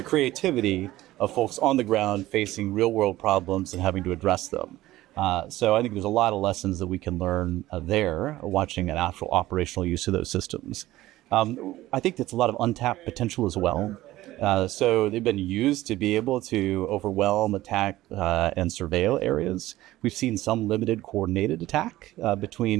creativity of folks on the ground facing real world problems and having to address them. So I think there's a lot of lessons that we can learn there, watching an actual operational use of those systems. I think that's a lot of untapped potential as well. So they've been used to be able to overwhelm, attack, and surveil areas. We've seen some limited coordinated attack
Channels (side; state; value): left; quieter; 16.1 dB